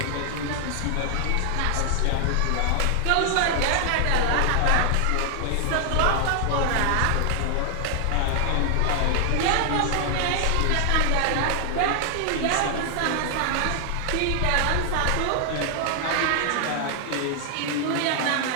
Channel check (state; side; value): different; both; correlation 0.00